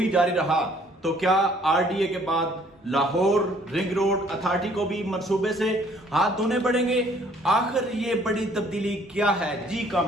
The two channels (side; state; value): both; normal; correlation 0.60